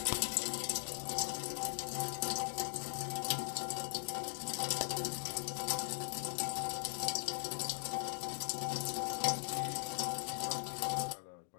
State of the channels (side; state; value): right; silent; digital silence